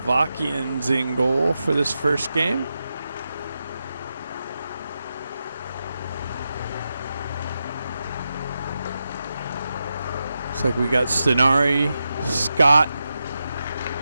in goal for this first game. Looks like we got Stenari, Scott,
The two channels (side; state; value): both; inverted; correlation -0.89